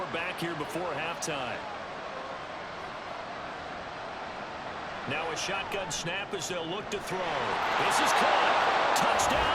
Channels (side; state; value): both; identical; correlation 1.00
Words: back here before halftime. Now a shotgun snap as they'll look to throw. This is caught.